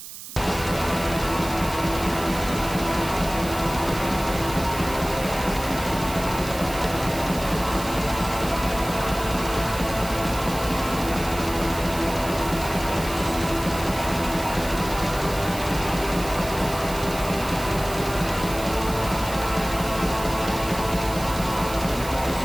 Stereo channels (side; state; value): right; noise; hiss, 12 dB below the sound